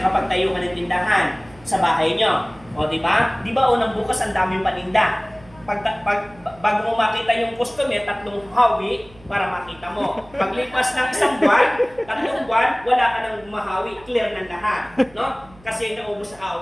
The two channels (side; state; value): right; noise; hum, 25 dB below the sound